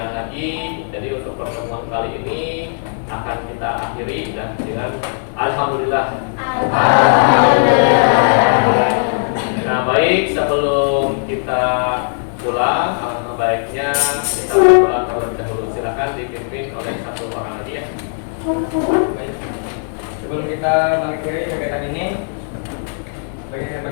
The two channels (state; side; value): silent; right; digital silence